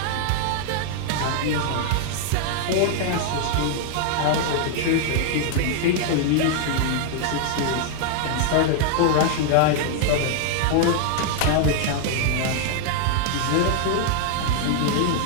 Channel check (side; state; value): both; different; correlation 0.00